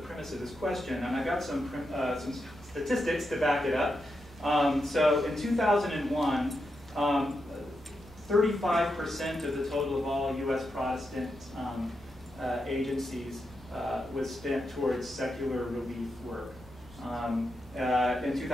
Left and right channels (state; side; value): normal; both; correlation 0.86